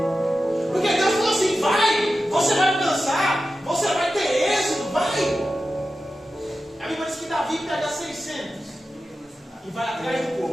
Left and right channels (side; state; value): both; normal; correlation 0.93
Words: Porque Deus falou assim: vai, você vai alcançar, você vai ter êxito, Davi pega 600 e vai atrás do